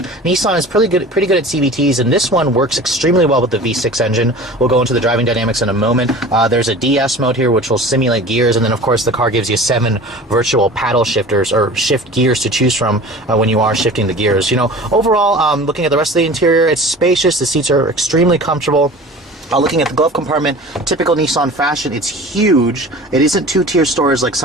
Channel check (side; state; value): both; normal; correlation 0.40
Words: Nissan is pretty good at CVTs, and this one works extremely well with the V6 engine. We'll go into the driving dynamics in a moment. There's a DS mode here, which will simulate gears, and then, of course, the car gives you 7 virtual paddle shifters, or shift gears, to choose from when you are shifting the gears. Overall, looking at the rest of the interior, it's spacious. The seats are extremely comfortable. Looking at the glove compartment, typical Nissan fashion, it's huge. It isn't 2-tier storage like